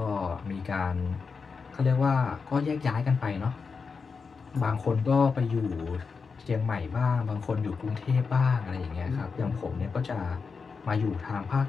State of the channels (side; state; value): right; quieter; 5.1 dB